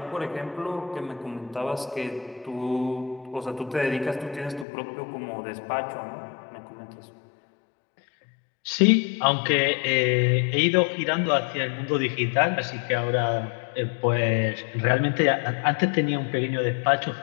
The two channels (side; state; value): right; drops out; at 4.7 s